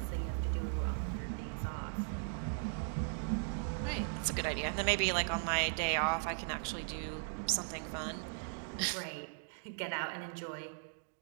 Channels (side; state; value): left; silent; digital silence